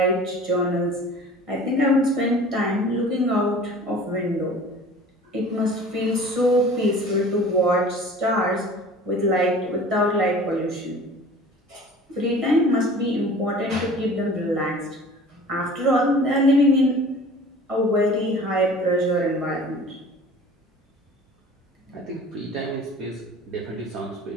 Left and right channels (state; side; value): normal; both; correlation 0.44